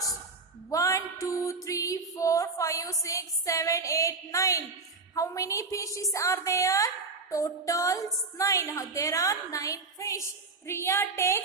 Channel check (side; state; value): left; quieter; 4.0 dB